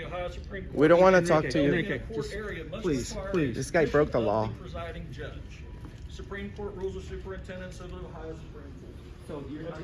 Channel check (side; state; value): both; identical; correlation 1.00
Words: We don't want to talk to you. Enrique, just please. This guy broke the law. Presiding judge. Supreme Court rules of superintendents of the Ohio Supreme Court. so That's